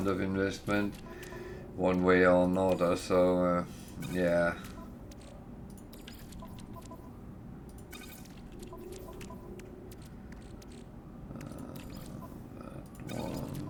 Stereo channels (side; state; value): both; identical; correlation 1.00